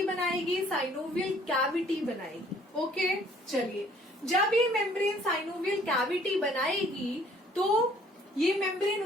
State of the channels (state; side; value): normal; both; correlation 0.59